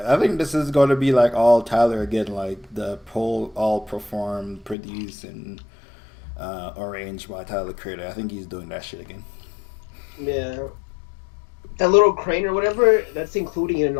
think this is going to be like all Tyler again, like the all performed, produced, and arranged by Tyler Creator. I think he's doing that shit again. Yeah. That little crane or whatever, that's including in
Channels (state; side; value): drops out; right; at 4.8 s